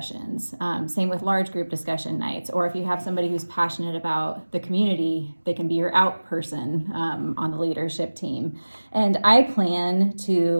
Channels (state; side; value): inverted; both; correlation -1.00